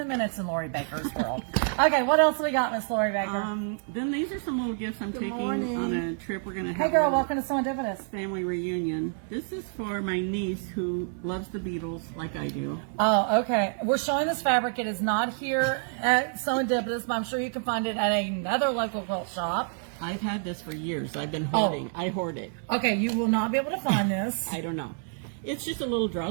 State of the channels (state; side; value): silent; left; 59 dB below the other